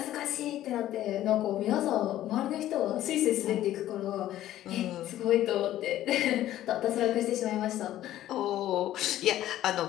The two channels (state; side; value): quieter; right; 13.3 dB